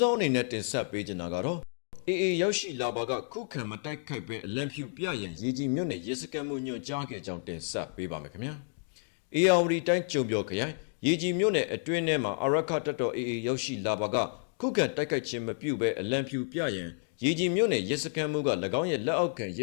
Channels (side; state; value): right; silent; digital silence